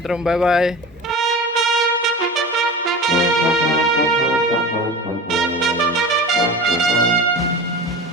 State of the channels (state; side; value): normal; both; correlation 0.32